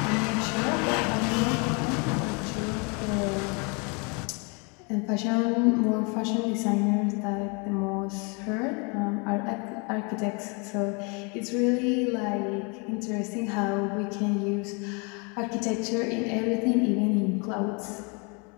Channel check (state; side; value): quieter; right; 32.7 dB